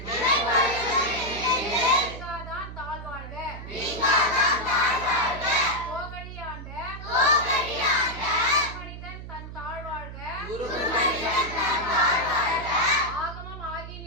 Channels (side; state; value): right; noise; hum, 11 dB below the sound